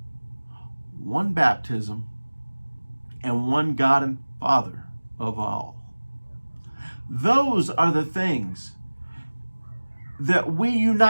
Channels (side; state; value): both; inverted; correlation -1.00